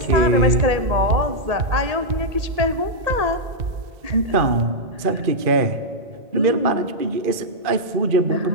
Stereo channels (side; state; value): left; late; 2.4 ms